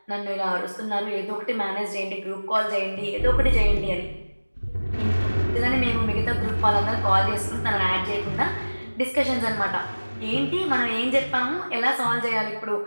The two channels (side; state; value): both; inverted; correlation -1.00